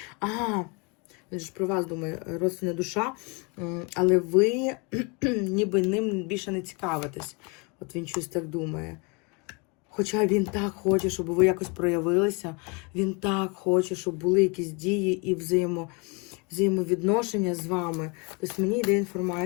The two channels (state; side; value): quieter; right; 31.0 dB